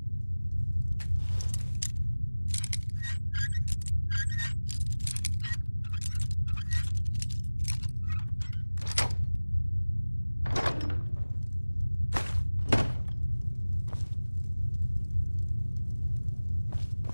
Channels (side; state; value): both; inverted; correlation -1.00